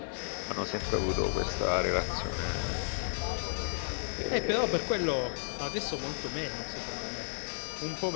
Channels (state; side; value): silent; right; digital silence